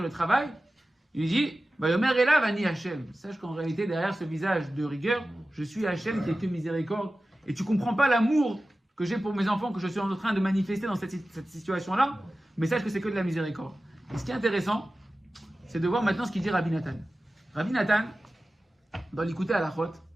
le travail. Il lui dit, Vayomer elav ani Hachem. Sache qu'en réalité, derrière ce visage de rigueur, je suis Hachem qui est que miséricorde. Et tu comprends pas l'amour que j'ai pour mes enfants, que je suis en train de manifester dans cette situation-là, mais sache que c'est que de la miséricorde. Et ce qui est intéressant, c'est de voir maintenant ce qu'il dit Rabbi Nathan. Rabbi Nathan, dans l'écouter à la chôte,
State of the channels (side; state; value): both; normal; correlation 0.95